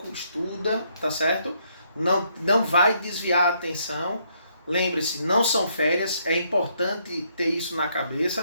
estuda, tá certo? Não vai desviar a atenção. Lembre-se, não são férias, é importante ter isso na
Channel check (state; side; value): inverted; both; correlation -0.72